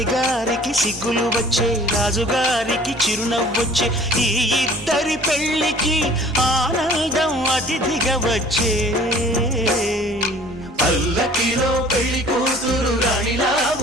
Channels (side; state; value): both; normal; correlation 0.50